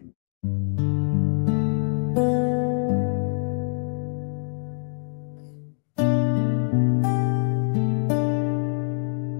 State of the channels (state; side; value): silent; right; digital silence